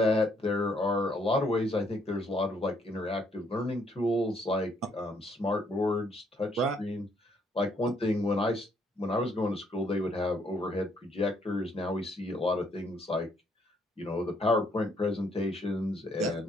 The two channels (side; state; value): both; normal; correlation 0.69